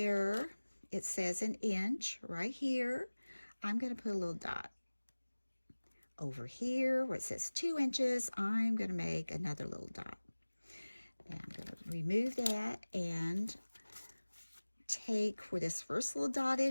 it says an inch right here, I'm going to put a little dot. Over here where it says 2 inches, I'm going to make another little dot. Now I'm going to remove that and take where this first little dot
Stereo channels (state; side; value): inverted; both; correlation -1.00